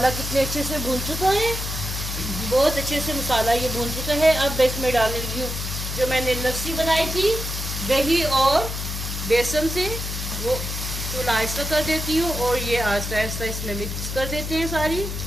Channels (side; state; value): left; noise; hum, 5 dB below the sound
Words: कितने अच्छे से भून चुका है, बहुत अच्छे से मसाला ये भून चुका है। अब इसमें डालने लगी हूँ जो मैंने लस्सी बनाई थी दही और बेसन से, वो चूल्हा आहिस्ता कर देती हूँ और ये आहिस्ता आहिस्ता इसमें मिक्स कर देते हैं सारी।